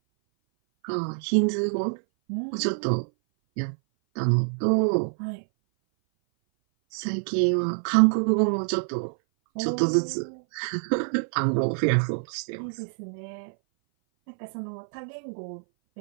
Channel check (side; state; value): left; silent; 58 dB below the other